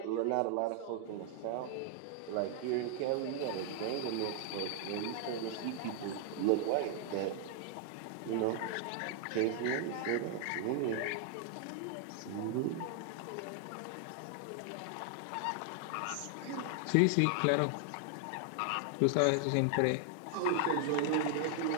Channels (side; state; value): both; different; correlation 0.00